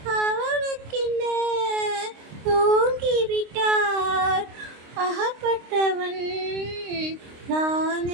அவனுக்கென்ன தூங்கிவிட்டார். அகப்பட்டவன் நான்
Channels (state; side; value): late; left; 26 ms